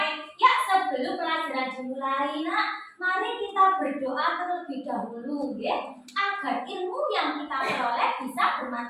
Ya, sebelum pelajaran dimulai, Nak, mari kita berdoa terlebih dahulu, ya, agar ilmu yang kita peroleh bisa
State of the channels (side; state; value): both; identical; correlation 1.00